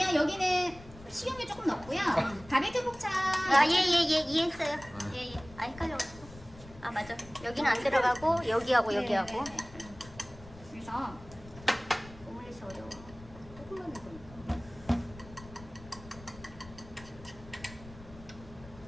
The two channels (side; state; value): left; noise; rumble, 19 dB below the sound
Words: 여기는 식용유 조금 넣고요. 바비큐 포차 아예예예 이해했어요. 예예. 아 헷갈려가지고. 아 맞아. 여기는 안 들어가고 여기하고 여기하고. 네. 그래서 오므리스 어려워. 조금만 넣으니까